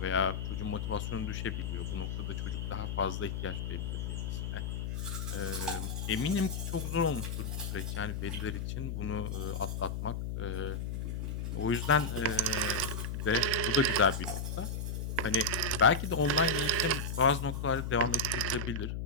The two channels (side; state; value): left; noise; hum, 3 dB below the sound